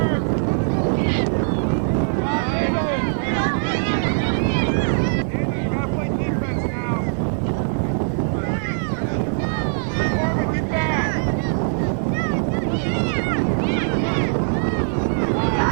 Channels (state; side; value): silent; left; 63 dB below the other